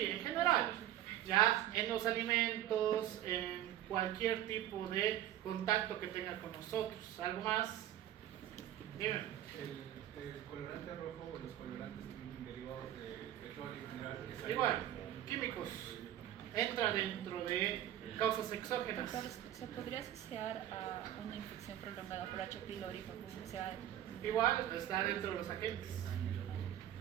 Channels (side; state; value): left; quieter; 12.3 dB